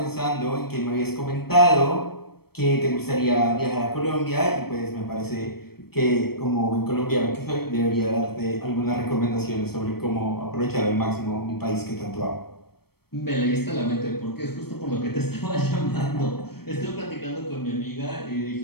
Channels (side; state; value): right; late; 0.96 ms